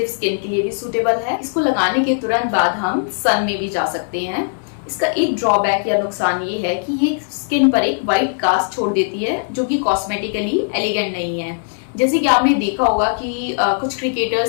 स्किन के लिए भी सूटेबल है। इसको लगाने के तुरंत बाद हम सन में भी जा सकते हैं। इसका एक ड्रॉबैक या नुकसान ये है कि ये स्किन पर एक व्हाइट कास्ट छोड़ देती है जो कि कॉस्मेटिकली एलिगेंट नहीं है। जैसे कि आपने देखा होगा कि कुछ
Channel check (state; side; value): silent; right; digital silence